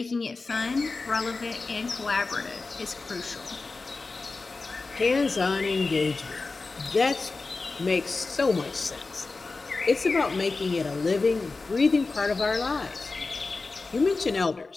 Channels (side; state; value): right; quieter; 3.8 dB